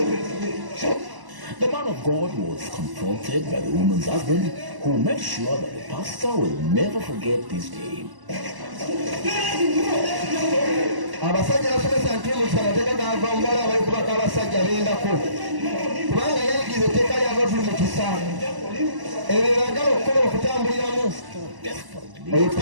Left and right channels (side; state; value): left; late; 1.0 ms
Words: The man of God was confronted by the woman's husband, who made sure that the pastor will never forget this day. Abasajja basomesa nti mu kisana teka gava mubala abali kubaka abasajja bendako ekisa ebyo bagala okukola okutambuliramu oyo